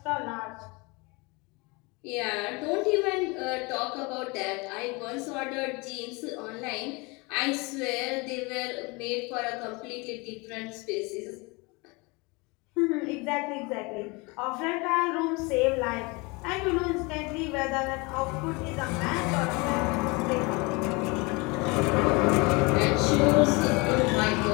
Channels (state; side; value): quieter; right; 27.2 dB